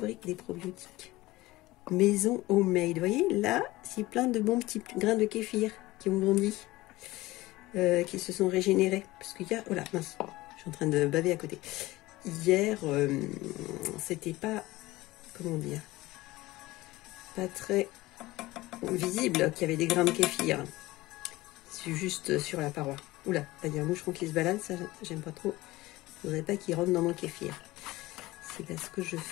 des probiotiques. Maison homemade. Vous voyez, là, c'est plein de bons petits grains de kéfir qui ont grandi, qui se sont régénérés. Parce qu'il y a... Oh là, mince, je suis en train de baver à côté. Hier, c'était pas... Comment dire? Pas très visible qu'il y avait des grains de kéfir. C'est juste sur la paroi. Oula, là, il y a un moucheron qui se balade, ça, j'aime pas trop. Je voudrais pas qu'il rentre dans mon kéfir. C'est parce que je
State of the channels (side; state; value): right; quieter; 18.9 dB